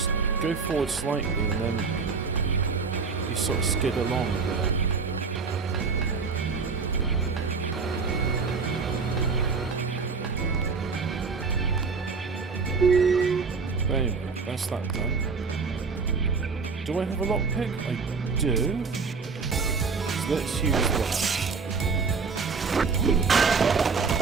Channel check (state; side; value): quieter; left; 4.9 dB